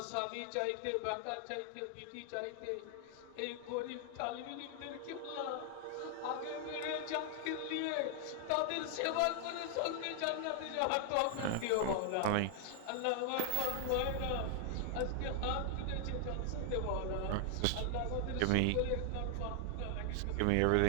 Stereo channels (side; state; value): both; different; correlation 0.00